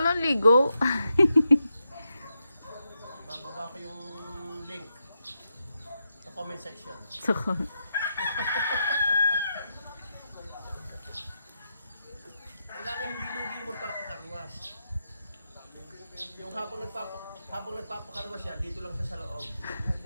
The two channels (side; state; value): both; inverted; correlation -0.85